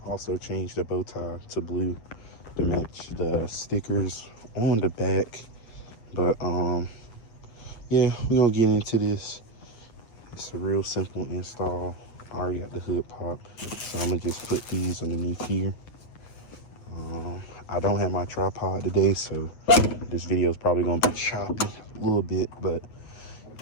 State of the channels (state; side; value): late; right; 9.0 ms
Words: Also changed the bow tie to blue to match the stickers on the back. But yeah, we're gonna get into this. It's a real simple install. I already got the hood pop, so I'm gonna just put these underneath here. I don't have my tripod today, so this video is probably gonna be choppy a little bit. But